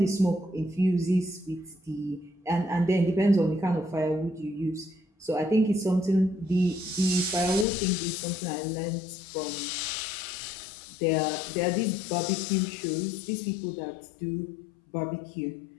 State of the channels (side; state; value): right; drops out; at 7.7 s